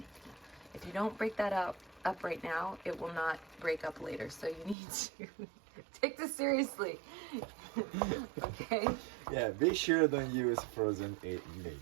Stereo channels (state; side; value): drops out; left; at 4.8 s